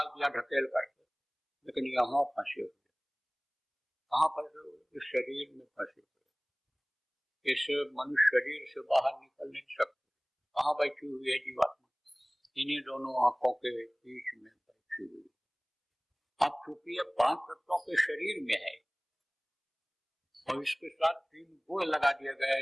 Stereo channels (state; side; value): identical; both; correlation 1.00